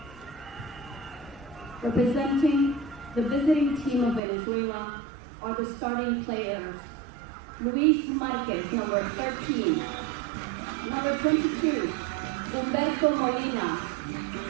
Representing the visiting team of Venezuela are the starting players: Luis Marquez, number 13, number 22, Humberto Molina,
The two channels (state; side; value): drops out; left; at 4.2 s